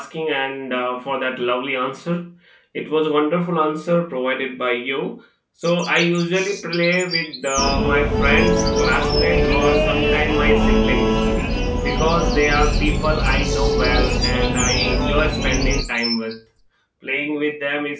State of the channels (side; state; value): both; identical; correlation 1.00